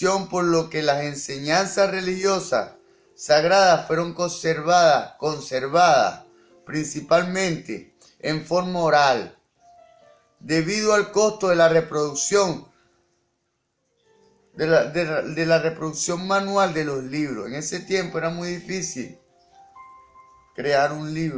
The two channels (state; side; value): identical; both; correlation 1.00